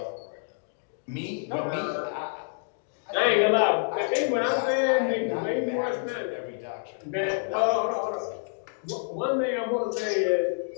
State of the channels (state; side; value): silent; right; digital silence